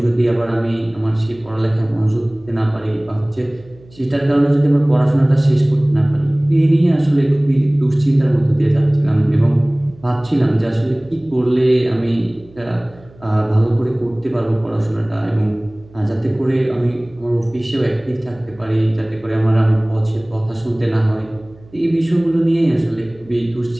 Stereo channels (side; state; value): right; noise; hum, 25 dB below the sound